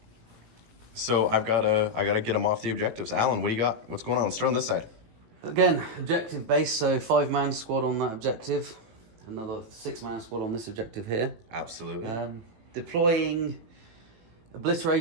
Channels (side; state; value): left; late; 18 ms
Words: So I gotta get him off the objectives. Allan, what do you got? What's going on? Let's start on this side. Again, objective base, so 5-man squad on that objective. Another 6-man squad on this objective here. Absolutely. Deploying